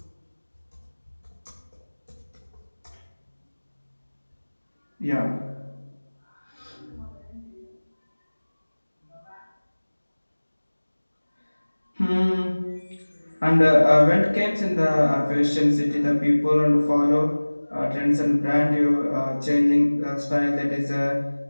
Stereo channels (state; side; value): inverted; both; correlation -1.00